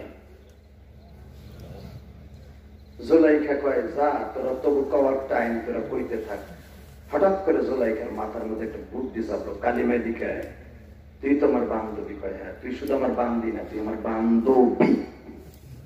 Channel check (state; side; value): identical; both; correlation 1.00